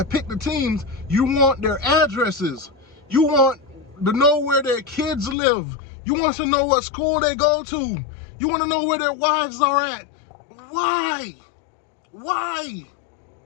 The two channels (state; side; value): drops out; right; at 5.4 s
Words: pick the teams. You want their addresses. You want to know where their kids live. You want to know what school they go to. You want to know where their wives are at. Why? Why?